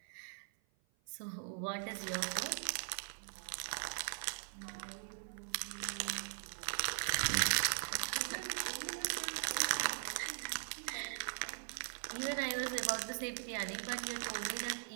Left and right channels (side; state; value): left; silent; 51 dB below the other